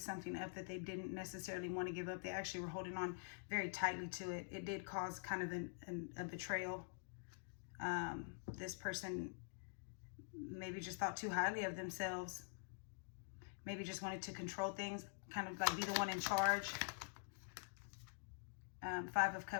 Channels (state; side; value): silent; right; digital silence